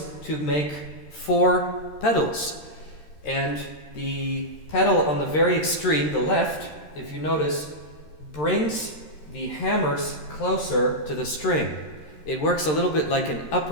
to make 4 pedals. And the pedal on the very extreme, the left, if you notice, brings the hammers closer to the string. It works a little bit like an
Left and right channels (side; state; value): right; late; 13 ms